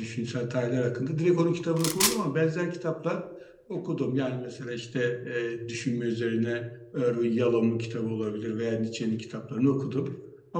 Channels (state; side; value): identical; both; correlation 1.00